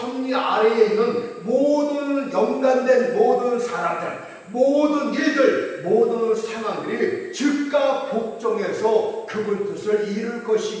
아래에 있는 모든 연관된 모든 사람들, 모든 일들, 모든 상황들이 즉각 복종해서 그분 뜻을 이룰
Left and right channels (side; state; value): both; identical; correlation 1.00